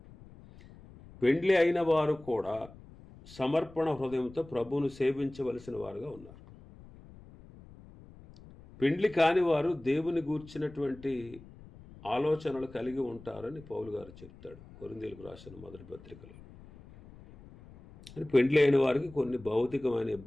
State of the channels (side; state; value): left; noise; rumble, 20 dB below the sound